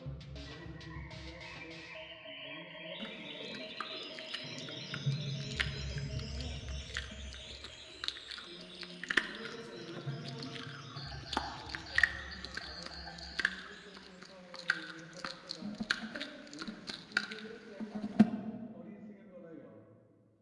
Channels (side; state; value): both; identical; correlation 1.00